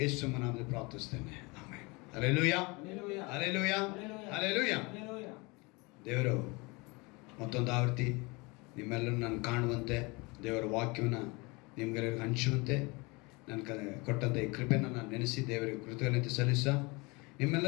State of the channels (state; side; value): quieter; right; 26.6 dB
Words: ಯೇಸು ನಾಮದಲ್ಲಿ ಪ್ರಾರ್ಥಿಸ್ತೇನೆ. ಆಮೆನ್. Hallelujah, hallelujah, hallelujah. ದೇವರು ಮತ್ತೊಂದು ಆವೃತ್ತಿ ನಿಮ್ಮೆಲ್ಲರೂ ನಾನು ಕಾಣುವಂತೆ, ದೇವರ ವಾಕ್ಯವನ್ನು ನಿಮ್ಗೆಲ್ಲರಿಗೂ ಹಂಚುವಂತೆ ನನ್ನ ಕೊಟ್ಟಂಥ ಈ ಕೃಪೆಯನ್ನು ನಾನು ನೆನೆಸಿ ದೇವರಿಗೆ ಕೃತಜ್ಞತೆ ಸಲ್ಲಿಸ